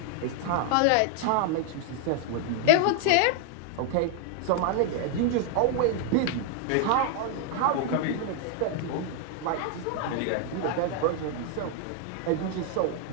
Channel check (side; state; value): both; different; correlation 0.00